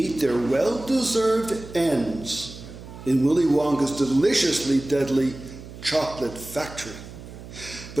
their well-deserved ends in Willy Wonka's deliciously deadly chocolate factory.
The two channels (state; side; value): noise; right; hum, 14 dB below the sound